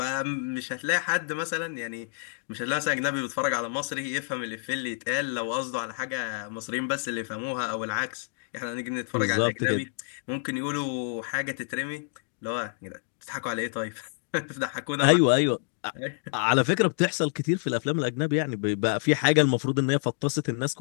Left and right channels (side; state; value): right; silent; digital silence